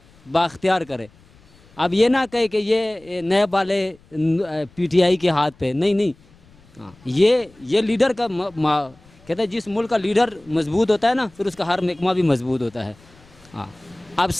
بااختیار کرے. اب یہ نہ کہے کہ یہ نیب والے پی ٹی آئی کے ہاتھ پہ، نہیں. ہاں، یہ لیڈر کا کہتے ہیں جس ملک کا لیڈر مضبوط ہوتا ہے نا، پھر اس کا ہر محکمہ بھی مضبوط ہوتا ہے. ہاں، اب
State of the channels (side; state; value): left; noise; rumble, 28 dB below the sound